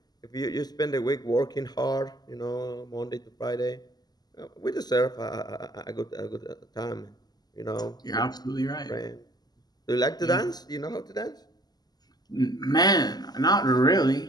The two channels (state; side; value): late; right; 0.20 ms